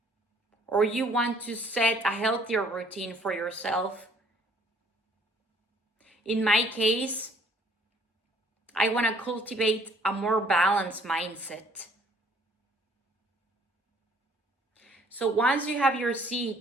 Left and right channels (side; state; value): both; normal; correlation 0.59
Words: Or you want to set a healthier routine for yourself. In my case, I want to cultivate a more balanced mindset. So once you have your